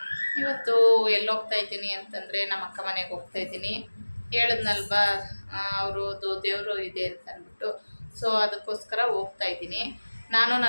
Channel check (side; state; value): both; inverted; correlation -1.00